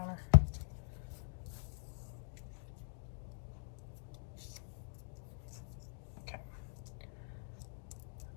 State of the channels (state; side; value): silent; right; digital silence